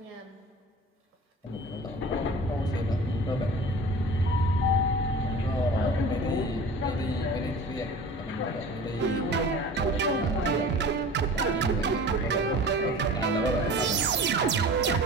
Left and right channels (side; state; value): both; normal; correlation 0.39